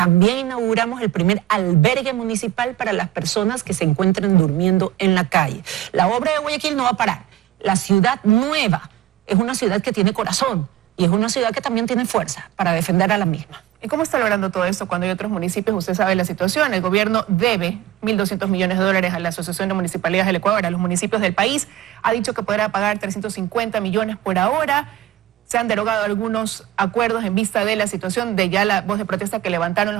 inauguramos el primer albergue municipal para las personas que se encuentren durmiendo en la calle. La obra de Guayaquil no va a parar. La ciudad nueva es una ciudad que tiene corazón y es una ciudad que también tiene fuerza para defender a la misma. ¿Y cómo está logrando todo esto cuando hay otros municipios? Usted sabe la situación. El gobierno debe 1.200 millones de dólares a la Asociación de Municipalidades del Ecuador, a los municipios del país. Ha dicho que podrá pagar 350 millones por ahora. Se han derogado algunos acuerdos en vista de la situación de ya la voz de protesta que levantaron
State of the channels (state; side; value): quieter; left; 13.7 dB